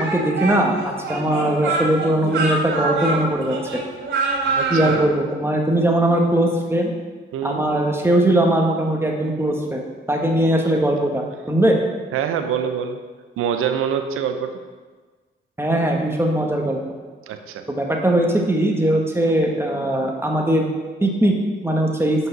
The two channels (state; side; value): normal; both; correlation 0.62